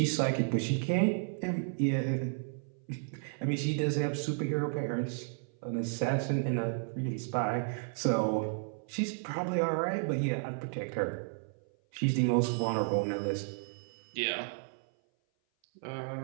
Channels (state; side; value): silent; left; 56 dB below the other